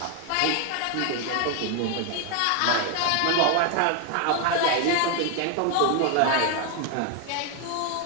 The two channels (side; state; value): both; different; correlation 0.01